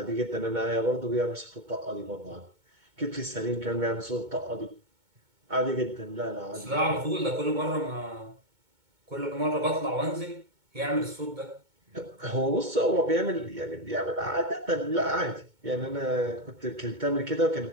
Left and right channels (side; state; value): left; late; 2.2 ms